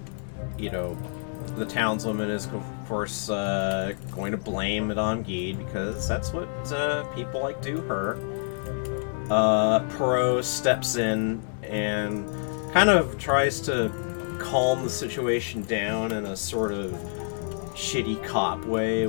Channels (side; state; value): right; silent; digital silence